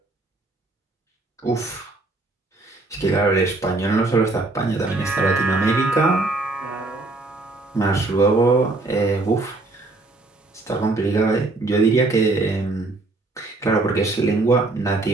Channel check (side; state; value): left; quieter; 3.2 dB